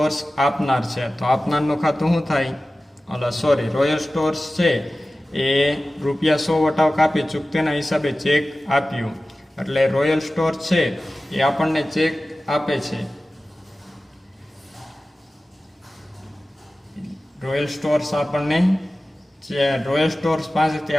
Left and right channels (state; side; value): normal; both; correlation 0.96